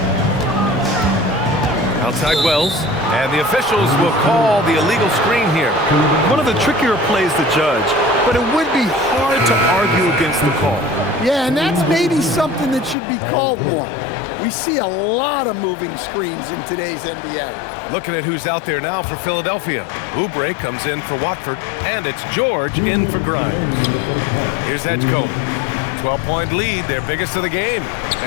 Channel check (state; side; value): drops out; right; at 13.0 s